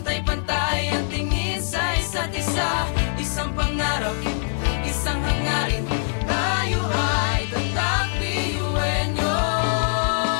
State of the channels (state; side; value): silent; right; 55 dB below the other